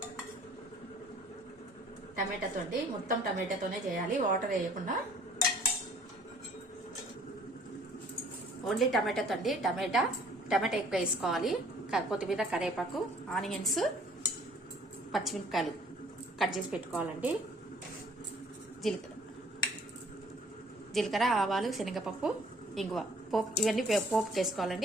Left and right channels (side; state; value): both; normal; correlation 0.56